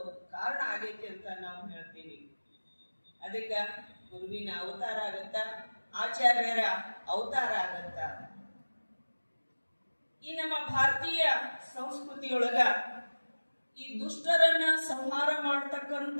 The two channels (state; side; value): inverted; both; correlation -1.00